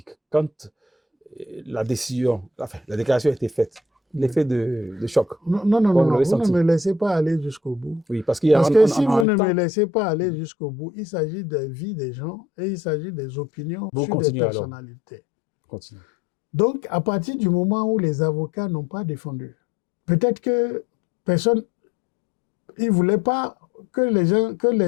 quand la décision, enfin, la déclaration a été faite, l'effet de choc. Non, vous ne me laissez pas aller jusqu'au bout. Oui, parce que si vous ne me laissez pas aller jusqu'au bout, il s'agit des vies des gens et il s'agit des opinions sur des personnalités. Continue. Donc, à partir du moment où les avocats n'ont pas défendu, peut-être que personne, ils ne voulaient pas que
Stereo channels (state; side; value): drops out; right; at 9.2 s